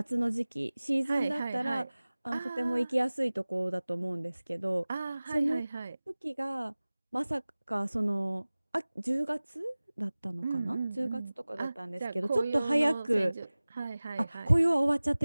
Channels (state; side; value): inverted; both; correlation -0.99